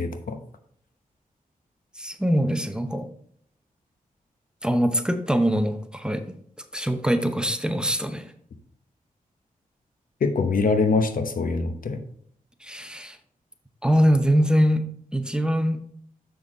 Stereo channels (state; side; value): normal; both; correlation 0.81